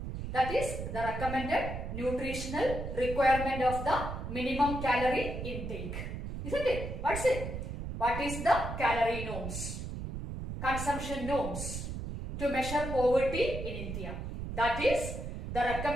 That is the recommended nutritional requirement of the minimum calorie intake. Isn't it? What's it? What is the calorie norms? Consumption norms to measure poverty in India. That is the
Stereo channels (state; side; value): noise; right; rumble, 6 dB below the sound